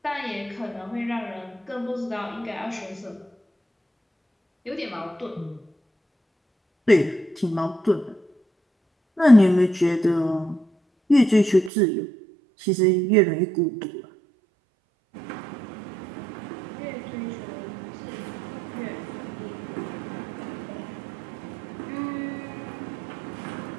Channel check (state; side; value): drops out; left; at 11.7 s